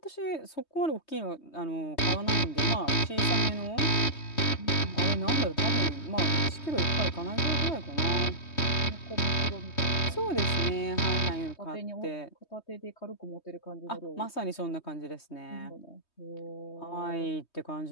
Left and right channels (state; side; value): late; right; 3.2 ms